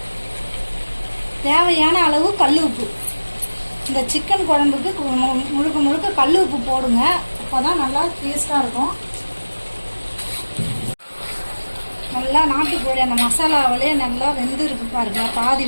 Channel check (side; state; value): both; inverted; correlation -1.00